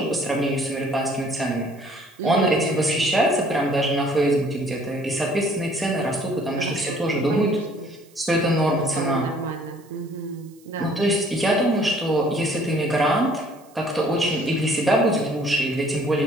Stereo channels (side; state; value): right; noise; hiss, 29 dB below the sound